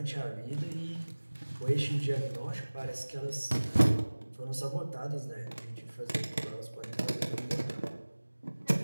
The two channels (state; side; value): inverted; both; correlation -1.00